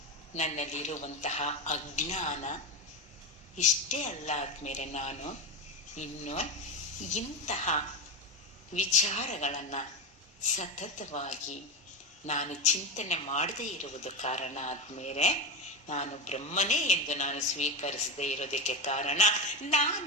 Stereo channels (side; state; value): both; normal; correlation 0.17